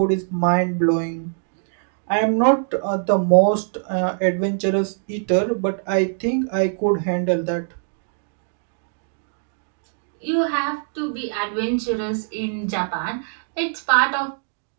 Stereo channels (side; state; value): left; silent; digital silence